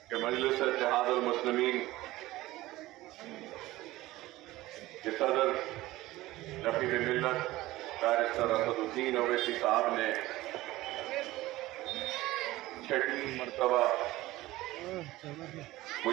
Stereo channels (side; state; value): left; quieter; 17.6 dB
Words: کہ مجلس اتحاد المسلمین کے صدر رفیع ملت بیرسٹر اسد الدین اویسی صاحب نے 6 مرتبہ